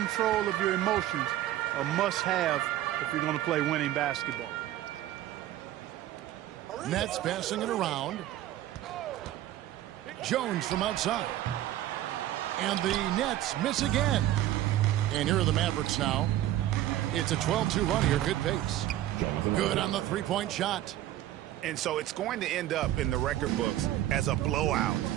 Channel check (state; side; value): quieter; left; 13.6 dB